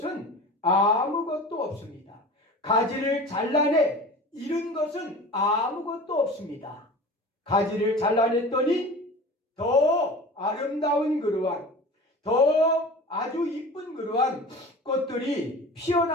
아무것도 없습니다. 가지를 잘라내 잃은 것은 아무것도 없습니다. 가지를 잘라냈더니 더 아름다운 그러한 더 아주 이쁜 그러한 꽃들이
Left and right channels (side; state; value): both; normal; correlation 0.36